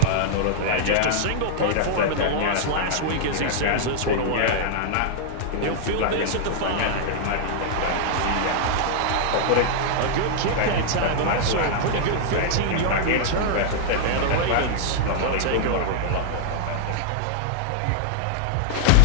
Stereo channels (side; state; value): both; different; correlation -0.01